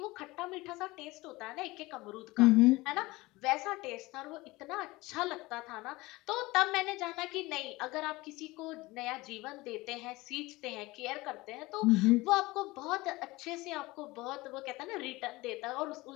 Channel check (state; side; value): quieter; right; 20.9 dB